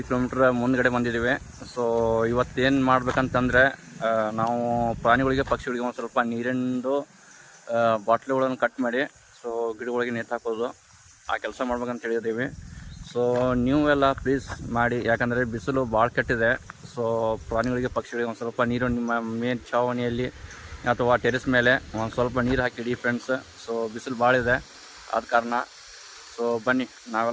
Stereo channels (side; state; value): both; identical; correlation 1.00